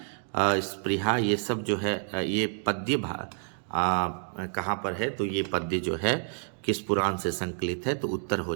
स्पृहा, ये सब जो है ये पद्य कहाँ पर है? तो ये पद्य जो है किस पुराण से संकलित है? तो उत्तर हो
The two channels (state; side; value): silent; left; 59 dB below the other